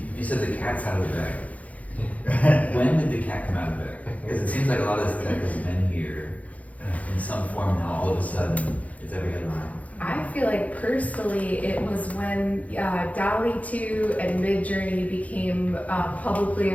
You said the cat's out of the bag. When did the cat come out of the bag? Because it seems like a lot of this tech has been here in some form now. All of a sudden, it's every headline. I feel like personally it was when DALL-E 2 and Midjourney became publicly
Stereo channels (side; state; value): right; late; 0.070 ms